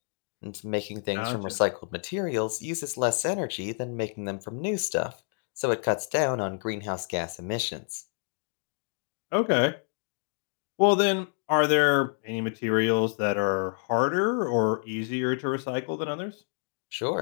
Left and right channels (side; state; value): right; silent; 59 dB below the other